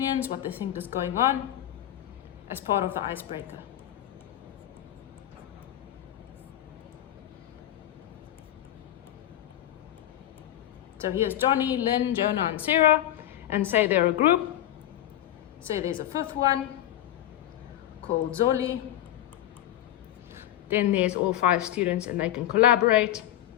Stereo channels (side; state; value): right; quieter; 12.7 dB